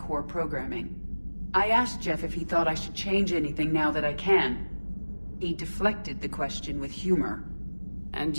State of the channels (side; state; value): both; inverted; correlation -1.00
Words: programming. I asked Jeff if he thought I should change anything now that I can. He deflected the question with humor. And